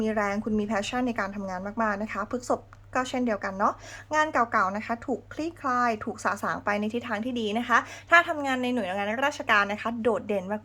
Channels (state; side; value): identical; both; correlation 1.00